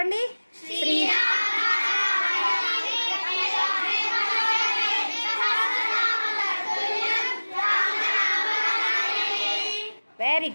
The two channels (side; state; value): both; inverted; correlation -1.00